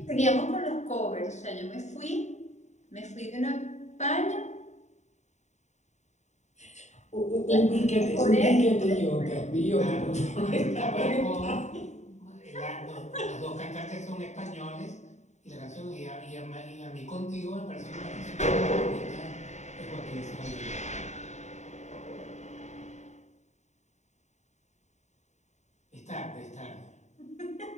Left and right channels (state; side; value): late; right; 0.34 ms